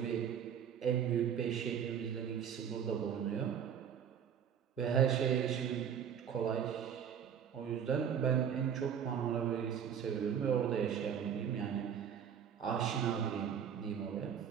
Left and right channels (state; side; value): quieter; left; 8.2 dB